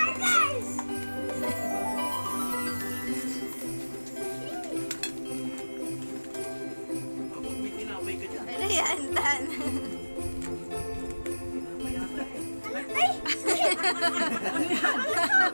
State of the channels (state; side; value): inverted; both; correlation -1.00